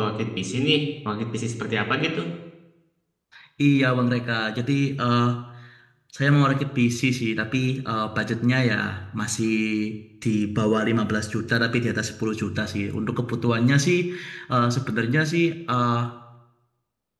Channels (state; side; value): identical; both; correlation 1.00